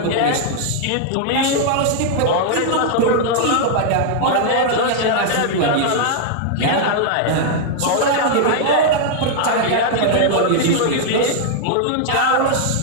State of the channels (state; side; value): different; both; correlation -0.01